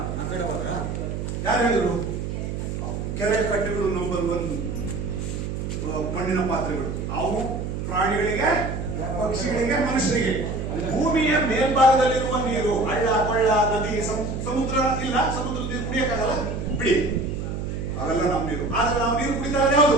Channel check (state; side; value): noise; right; hum, 4 dB below the sound